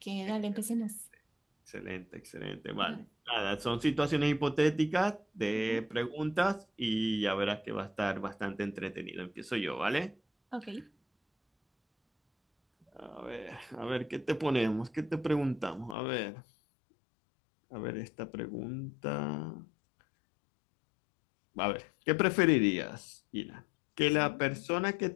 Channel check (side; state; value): right; drops out; at 16.0 s